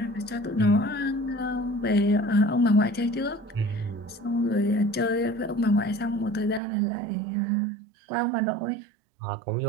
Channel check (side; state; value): left; drops out; at 6.6 s